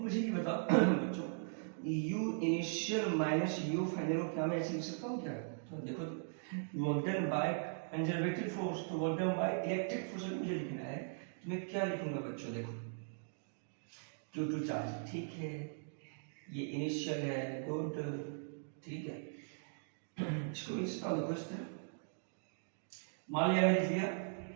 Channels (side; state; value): left; silent; digital silence